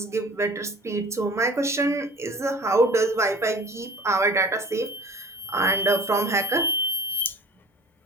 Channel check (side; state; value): both; normal; correlation 0.44